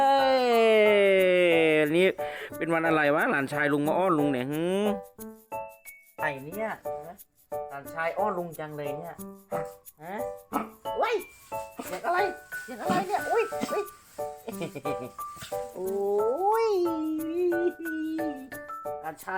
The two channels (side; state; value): both; identical; correlation 1.00